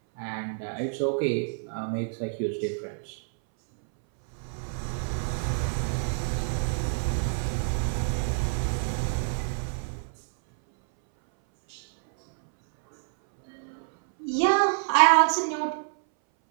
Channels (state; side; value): silent; left; 60 dB below the other